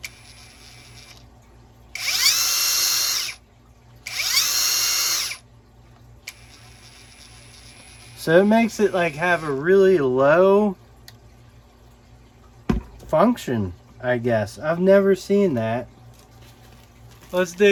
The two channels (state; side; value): identical; both; correlation 1.00